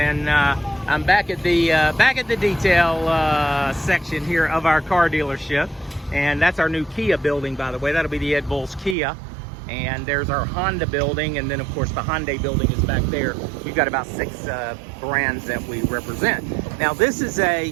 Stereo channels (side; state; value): left; drops out; at 9.0 s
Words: I'm back at the detail section here of our car dealership, and that's our new Kia building, by the way. That'll be the Ed Volz Kia, and there's our Honda building, and then of course the Hyundai building is back there. We've got about 6 brands that we represent. Now this is